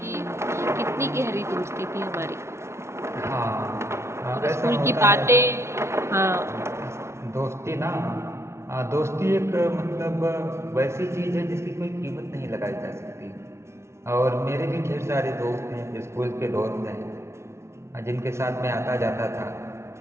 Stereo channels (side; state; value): left; late; 0.13 ms